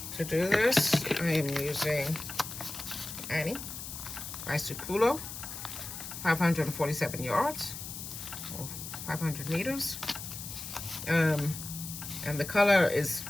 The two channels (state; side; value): noise; left; hiss, 9 dB below the sound